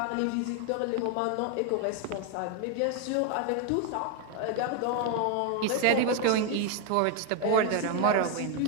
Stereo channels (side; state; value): both; different; correlation 0.01